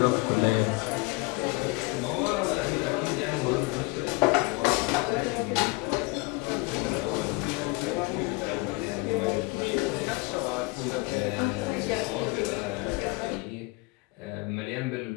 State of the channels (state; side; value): quieter; right; 25.6 dB